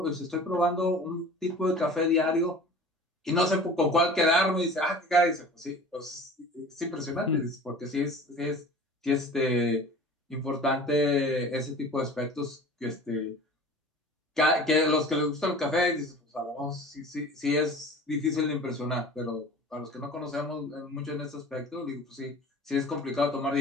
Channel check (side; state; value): both; normal; correlation 0.42